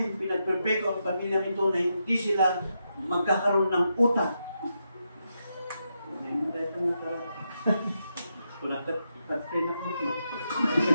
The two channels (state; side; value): inverted; both; correlation -0.84